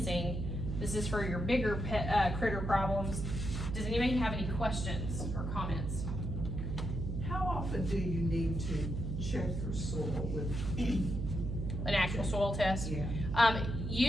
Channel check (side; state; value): right; noise; hum, 3 dB below the sound